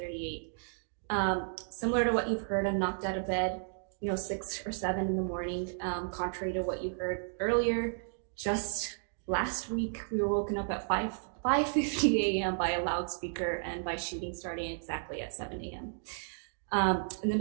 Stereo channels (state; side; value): silent; left; digital silence